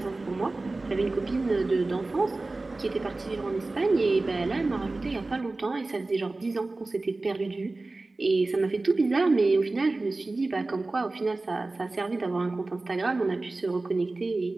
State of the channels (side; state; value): left; quieter; 3.2 dB